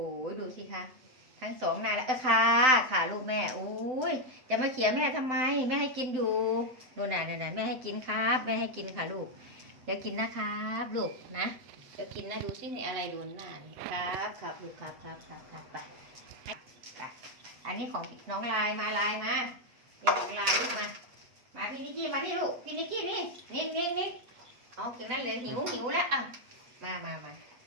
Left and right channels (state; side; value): late; left; 7.7 ms